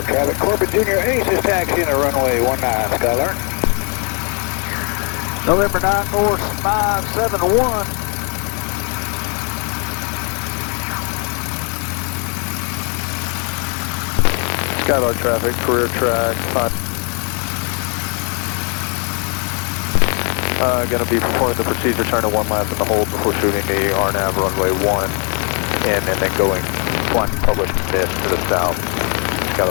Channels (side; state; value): right; quieter; 36.8 dB